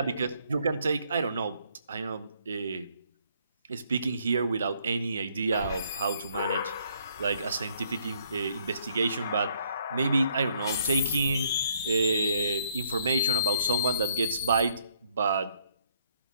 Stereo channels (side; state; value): both; inverted; correlation -0.68